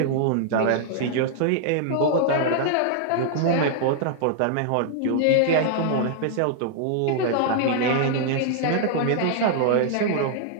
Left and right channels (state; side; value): different; both; correlation -0.01